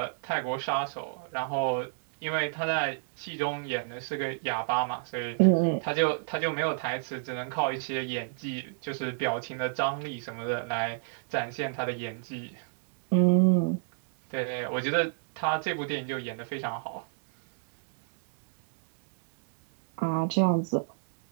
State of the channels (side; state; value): left; silent; digital silence